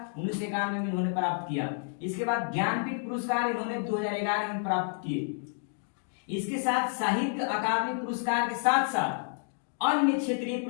1991 में इन्होंने प्राप्त किया। इसके बाद ज्ञानपीठ पुरस्कार इन्होंने 2011 में प्राप्त किए। इसके साथ साहित्य अकादमी पुरस्कार के साथ साथ अन्य क्षेत्रीय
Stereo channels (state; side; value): silent; right; digital silence